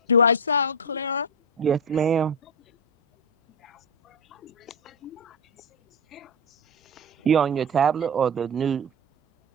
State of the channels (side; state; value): both; normal; correlation 0.10